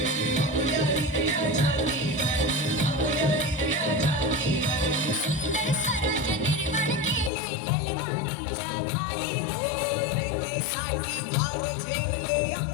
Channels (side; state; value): right; drops out; at 7.3 s